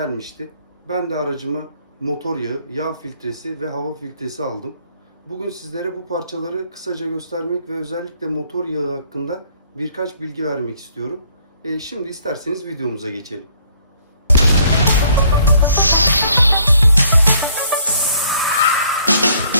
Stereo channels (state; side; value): inverted; both; correlation -0.63